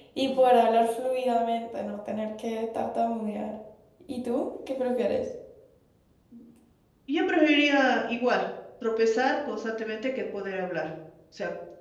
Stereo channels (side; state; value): both; identical; correlation 1.00